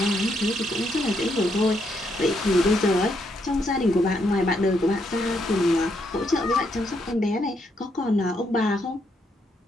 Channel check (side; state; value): both; normal; correlation 0.76